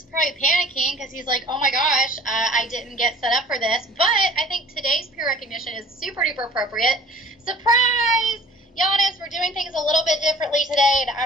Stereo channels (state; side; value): normal; both; correlation 0.48